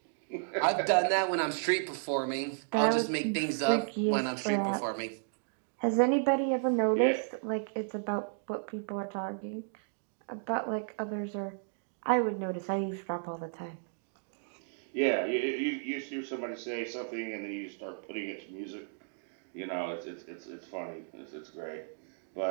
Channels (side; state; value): left; silent; digital silence